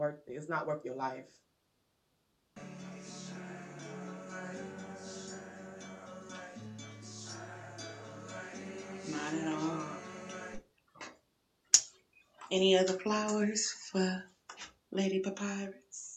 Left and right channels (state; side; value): identical; both; correlation 1.00